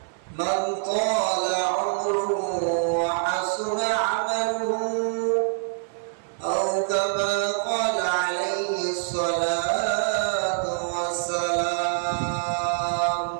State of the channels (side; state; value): left; silent; 58 dB below the other